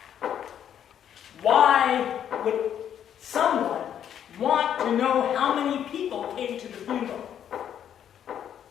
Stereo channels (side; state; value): right; quieter; 9.5 dB